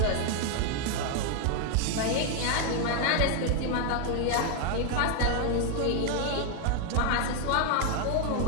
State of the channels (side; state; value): both; different; correlation 0.00